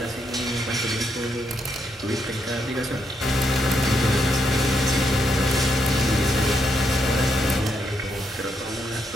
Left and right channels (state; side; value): normal; both; correlation 0.78